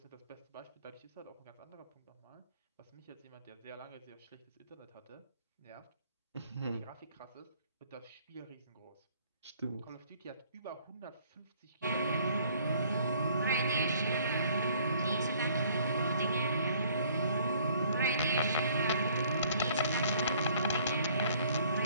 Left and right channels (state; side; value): inverted; both; correlation -0.58